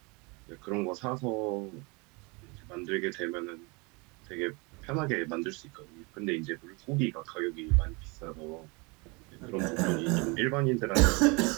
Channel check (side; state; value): left; quieter; 28.8 dB